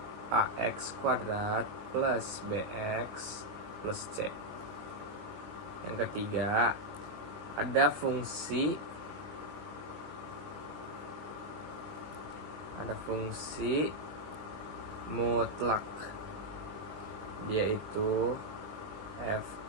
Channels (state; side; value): late; left; 20 ms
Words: ax kuadrat plus bx plus c. Yang ketiga ada fungsi mutlak. Dia itu